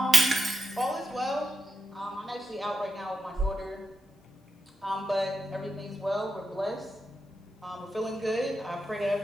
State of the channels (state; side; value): normal; both; correlation 0.86